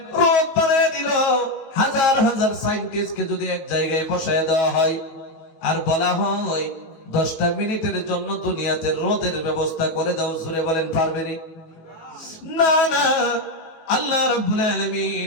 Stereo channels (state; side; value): late; right; 18 ms